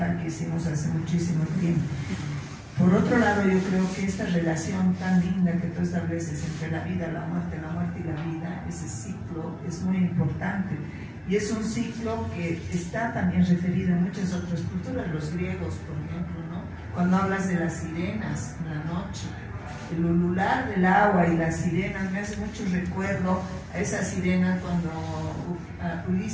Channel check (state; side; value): identical; both; correlation 1.00